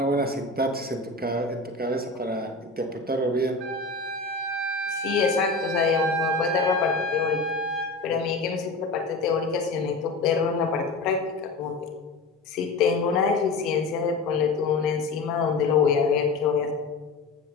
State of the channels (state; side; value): quieter; right; 3.5 dB